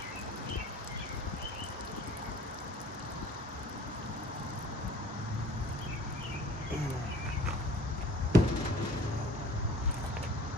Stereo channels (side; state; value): both; normal; correlation 0.48